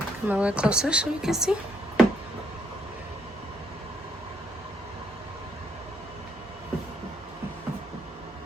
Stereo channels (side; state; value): both; normal; correlation 0.70